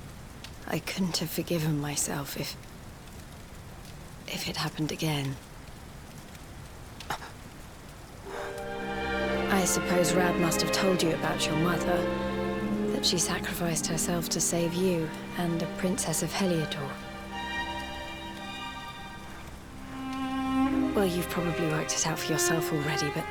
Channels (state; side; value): identical; both; correlation 1.00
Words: I couldn't have forgiven myself if it happened again. I suppose Rab must have told you about your mother, that she sacrificed herself to save you and the Princess of Heliodor. Well, you've probably worked it out for yourself already, but